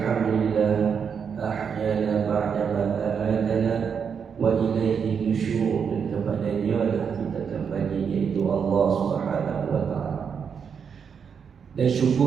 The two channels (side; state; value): left; quieter; 6.8 dB